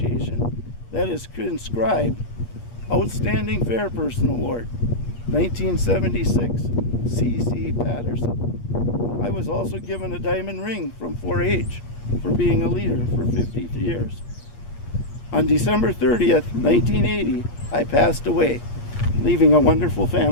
that is inscribed Outstanding Fair Person Award, 1976, C.C. Patterson. I was also given a diamond ring from 4-H for being a leader for 50 years. On December 30th, 1980, I passed away, leaving a wonderful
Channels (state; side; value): late; right; 8.5 ms